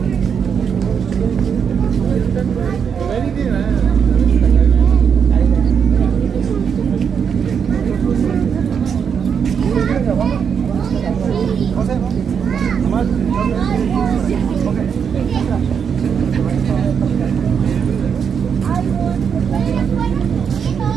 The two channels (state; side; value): quieter; left; 7.1 dB